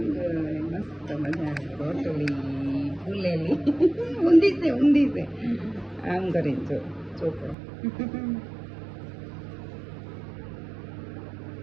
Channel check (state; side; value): drops out; left; at 7.6 s